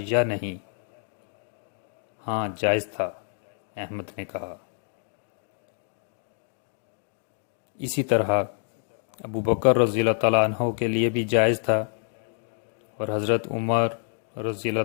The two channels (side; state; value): right; silent; 60 dB below the other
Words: یا نہیں؟ ہاں جائز تھا، احمد نے کہا۔ اسی طرح ابو بکر رضی اللہ تعالیٰ عنہ کے لیے بھی جائز تھا، اور حضرت عمر رضی